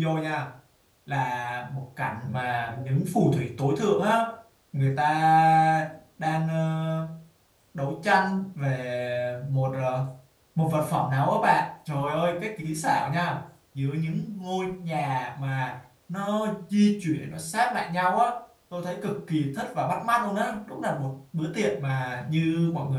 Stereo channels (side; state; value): both; identical; correlation 1.00